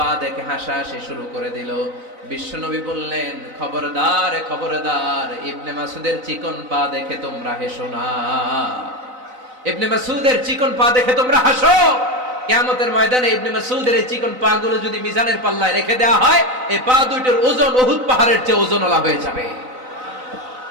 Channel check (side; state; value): left; late; 4.0 ms